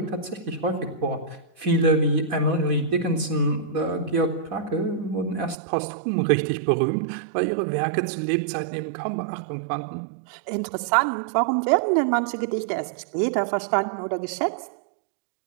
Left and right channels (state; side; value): drops out; left; at 5.6 s